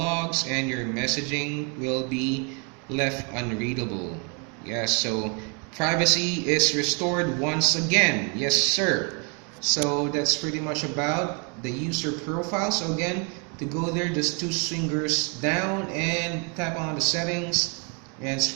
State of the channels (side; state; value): left; quieter; 35.6 dB